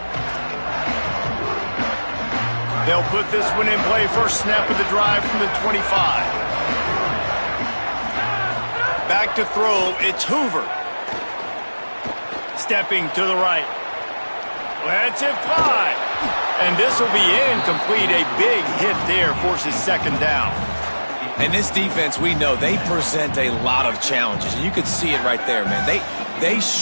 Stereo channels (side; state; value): both; inverted; correlation -1.00